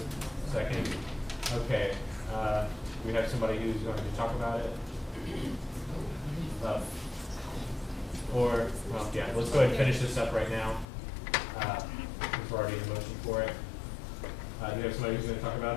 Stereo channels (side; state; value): right; drops out; at 10.9 s